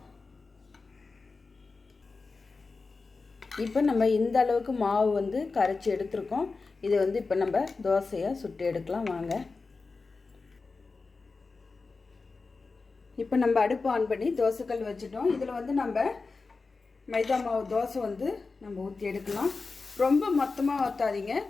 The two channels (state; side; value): quieter; right; 4.1 dB